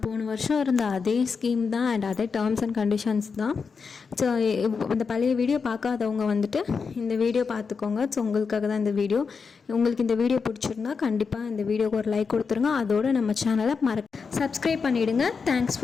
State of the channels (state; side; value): quieter; right; 5.3 dB